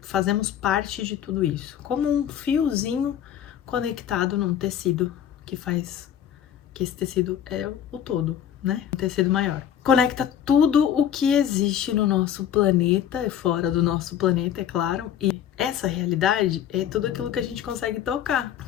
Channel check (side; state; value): right; quieter; 9.9 dB